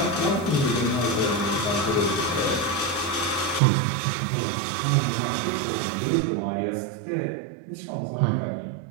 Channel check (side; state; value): left; drops out; at 3.6 s